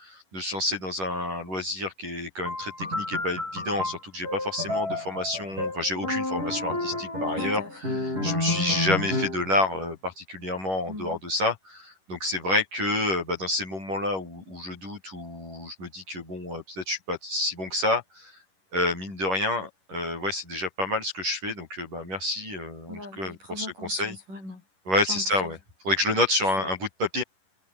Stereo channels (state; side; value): late; left; 11 ms